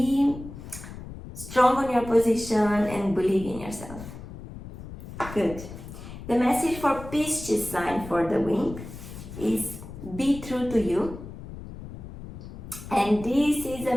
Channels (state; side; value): noise; left; rumble, 12 dB below the sound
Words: strong on your position and believe in yourself. Good. The message for Pisces sign for the week is be true to you. And this is a